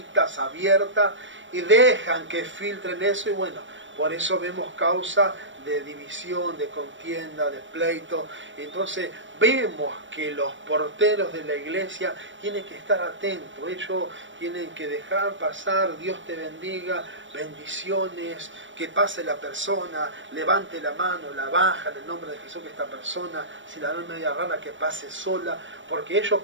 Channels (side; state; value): left; late; 0.55 ms